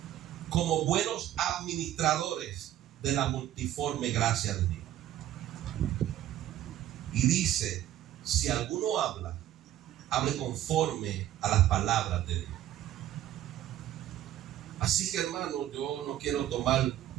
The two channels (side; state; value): left; quieter; 12.6 dB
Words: como buenos administradores de la multiforme gracia de Dios. Y dice: si alguno habla, hable conforme a las palabras de Dios. Así que, hermano, yo no quiero tomar